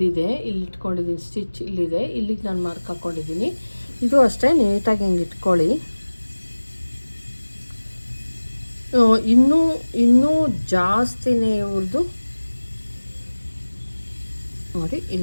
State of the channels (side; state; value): both; inverted; correlation -1.00